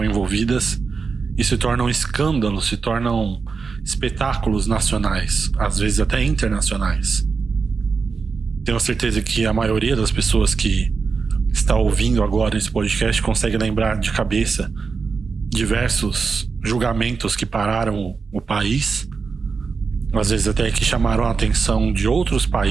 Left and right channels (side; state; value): left; quieter; 5.0 dB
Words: envolvidas e se tornam escândalos, se tornam espetáculos nacionais, às vezes até internacionais. Tenho certeza que a maioria das pessoas que está ouvindo agora esse podcast consegue lembrar de cabeça diversos julgamentos que pararam o país, às vezes até que chamaram a atenção de outros